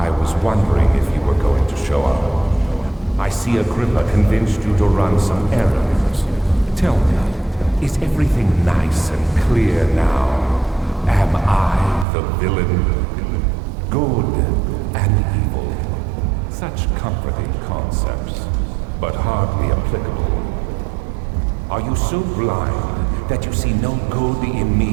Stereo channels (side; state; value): left; drops out; at 12.1 s